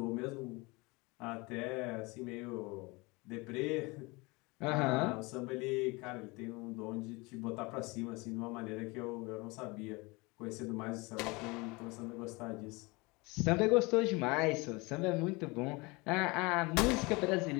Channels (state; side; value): quieter; right; 25.6 dB